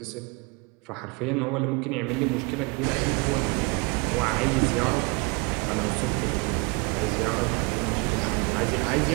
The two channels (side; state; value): left; quieter; 29.7 dB